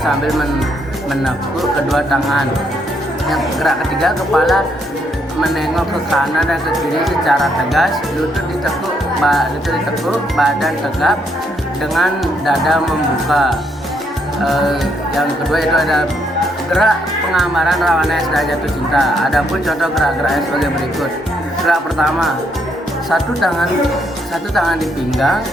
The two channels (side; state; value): both; normal; correlation 0.74